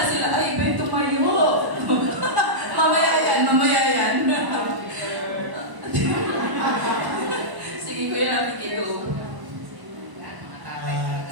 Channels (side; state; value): left; late; 1.0 ms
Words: sila, ay, iba tumayo. Mamaya yan. Sige, Kuya Rafi, go.